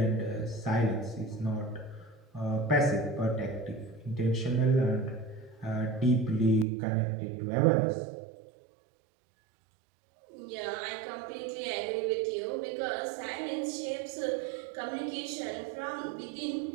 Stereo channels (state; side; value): drops out; left; at 6.7 s